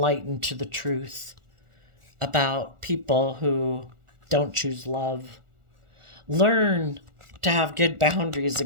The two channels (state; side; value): late; left; 1.4 ms